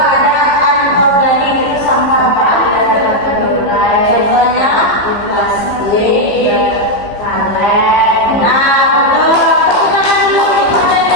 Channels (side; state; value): right; late; 15 ms